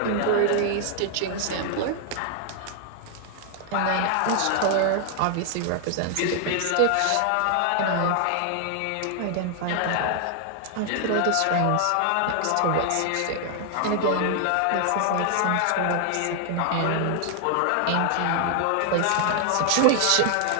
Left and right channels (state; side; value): different; both; correlation 0.00